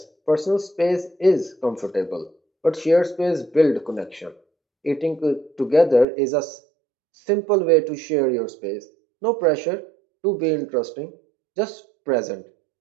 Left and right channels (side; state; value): left; drops out; at 6.1 s